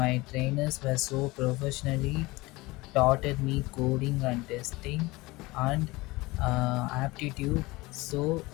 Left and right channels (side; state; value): right; quieter; 21.7 dB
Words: trainers were so professionally taught me coding and testing and aptitude. So